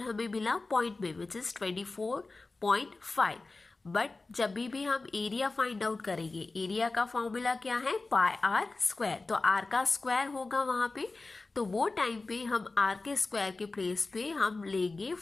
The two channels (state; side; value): quieter; right; 3.5 dB